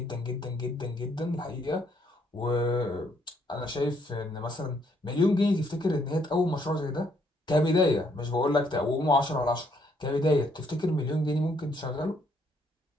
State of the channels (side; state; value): both; normal; correlation 0.69